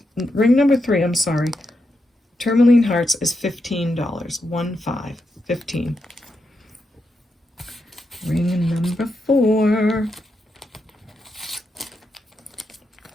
ring number 3, I'm sorry, Tourmaline Hearts is $15. 15. Ring number 4.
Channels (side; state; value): both; normal; correlation 0.84